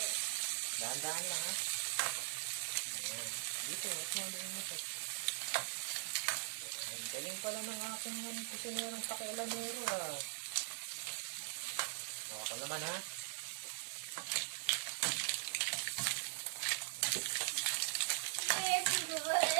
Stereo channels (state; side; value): silent; left; 50 dB below the other